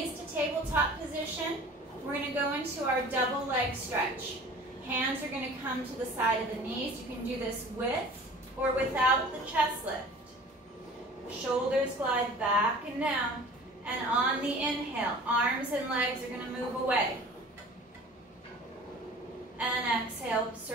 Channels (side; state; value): both; normal; correlation 0.44